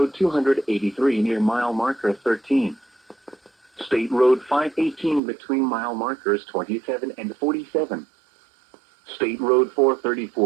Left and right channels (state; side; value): drops out; left; at 5.2 s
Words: 283 near mile marker 13. State Road 518 between mile markers 27 and 47. State Road